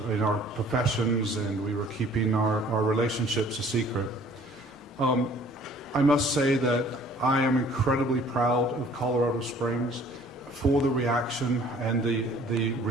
in our professions, and we were keeping our relationships a secret. I must say that I am incredibly proud of Colorado Springs for the reaction and the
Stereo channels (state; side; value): normal; both; correlation 0.54